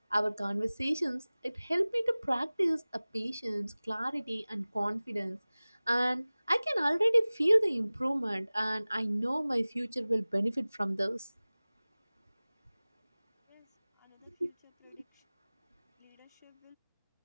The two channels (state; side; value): inverted; both; correlation -0.99